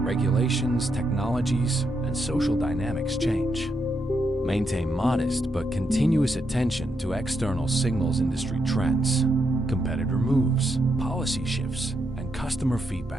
technologies, and social dynamics change. Maintain modest but continuous attention to external signals, industry trends, competitor moves, policy shifts, and customer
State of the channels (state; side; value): normal; both; correlation 0.81